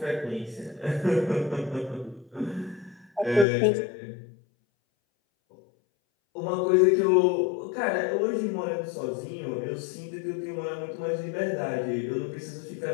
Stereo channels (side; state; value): right; drops out; at 3.5 s